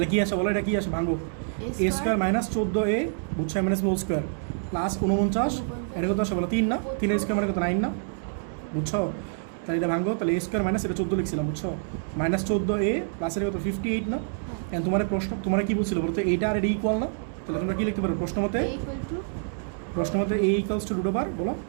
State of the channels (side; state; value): left; silent; digital silence